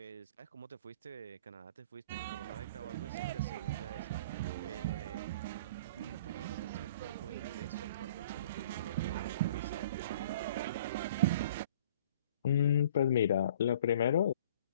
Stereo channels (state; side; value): inverted; both; correlation -0.50